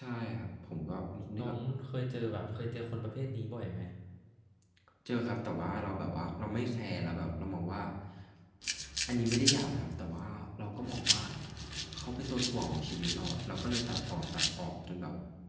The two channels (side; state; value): both; identical; correlation 1.00